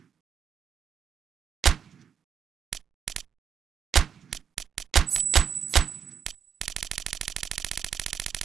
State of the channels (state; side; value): quieter; left; 7.8 dB